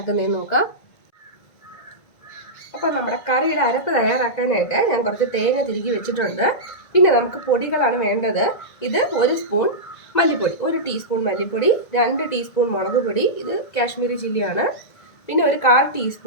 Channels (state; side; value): late; right; 1.9 ms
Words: നോക്കാം. അപ്പോൾ നമ്മുടെ കറിയുടെ അരപ്പ് തയ്യാറാക്കാനായിട്ട് ഞാൻ കുറച്ച് തേങ്ങ തിരുകി വെച്ചിട്ടുണ്ട്. പിന്നെ നമുക്ക് പൊടികളാണ് വേണ്ടത്. ഇത് 1 സ്പൂൺ മല്ലിപ്പൊടി, 1 ടീസ്പൂൺ മല്ലിപ്പൊടി, 2 ടീസ്പൂൺ മുളക് പൊടി, ഇത് കാശ്മീരി ചില്ലിയാണ്. പിന്നെ ഒരു 1/4